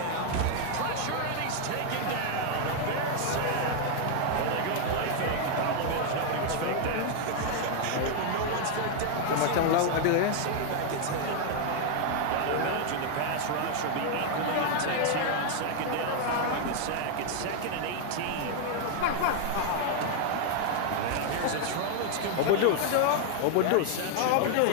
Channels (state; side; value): different; both; correlation 0.00